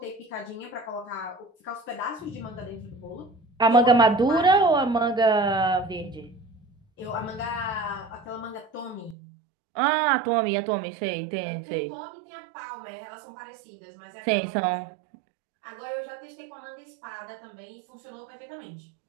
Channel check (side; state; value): left; drops out; at 9.2 s